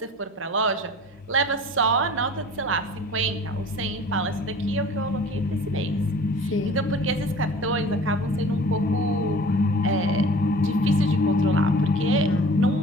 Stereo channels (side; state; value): both; normal; correlation 0.44